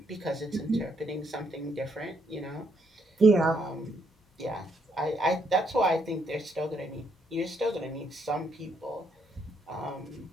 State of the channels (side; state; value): both; normal; correlation 0.73